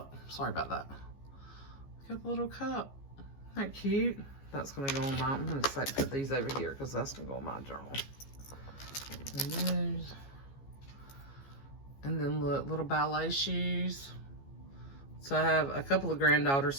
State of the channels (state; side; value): late; right; 15 ms